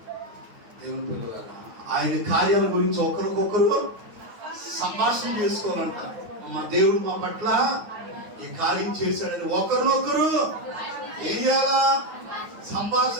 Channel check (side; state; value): left; late; 9.5 ms